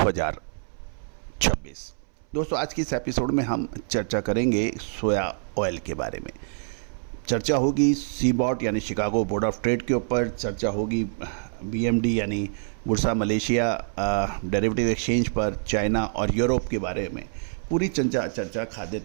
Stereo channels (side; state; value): left; silent; 61 dB below the other